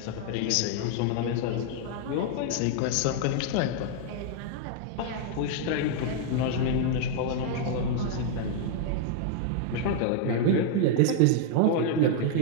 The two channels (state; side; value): different; both; correlation 0.00